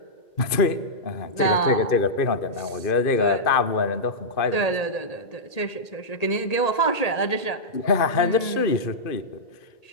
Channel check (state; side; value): late; right; 2.5 ms